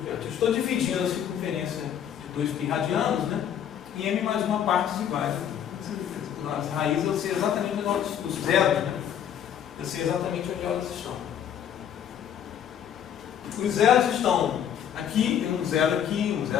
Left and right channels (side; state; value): right; quieter; 9.3 dB